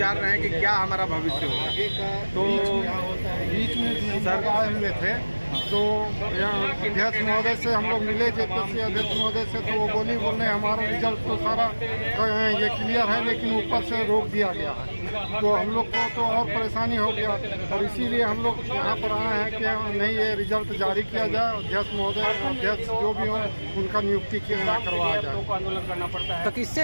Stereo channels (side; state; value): both; inverted; correlation -1.00